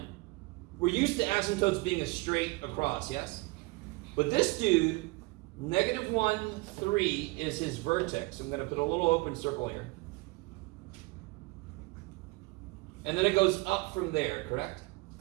We're used to asymptotes being a straight across, yes? But this dude, -1, 3 is his vertex. I'm going to put a little open circle here. And then it goes up from there, correct?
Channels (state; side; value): quieter; left; 24.7 dB